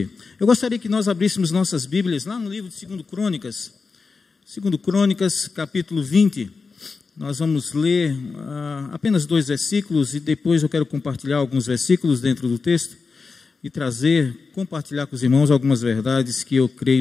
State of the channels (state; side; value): quieter; right; 4.6 dB